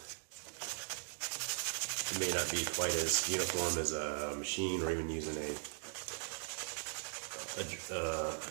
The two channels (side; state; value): left; silent; 52 dB below the other